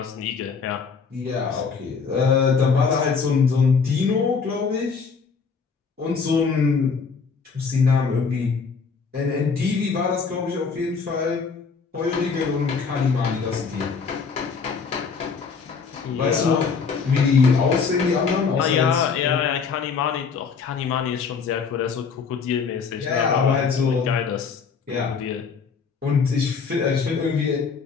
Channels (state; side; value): quieter; right; 5.4 dB